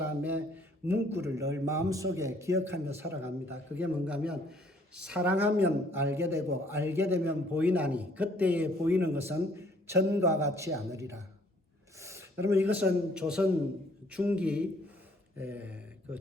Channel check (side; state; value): both; normal; correlation 0.62